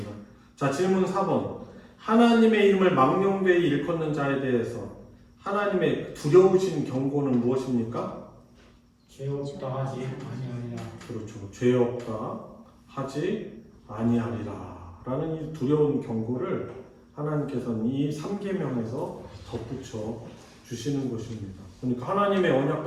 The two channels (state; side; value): identical; both; correlation 1.00